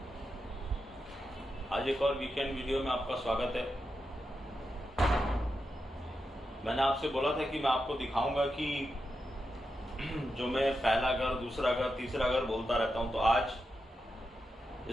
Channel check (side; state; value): both; normal; correlation 0.87